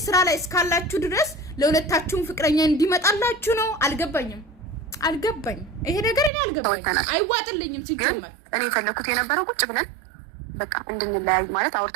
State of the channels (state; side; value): drops out; left; at 6.3 s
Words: ስራ ላይ እስካላችሁ ድረስ ለሁለታችሁም ፍቅረኛ እንዲመጣላችሁ ነው አልገባኝም ይሄ ነገር እኔ አልገባኝ አይዋጥልኝም ሲጀመር እኔ ፈለኩት የነበረው ቁጭ ብለን በቃ እንድንለያይ ማለት